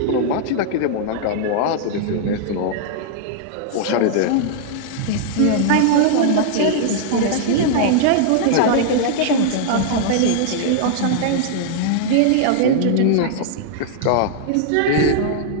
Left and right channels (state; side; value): different; both; correlation -0.01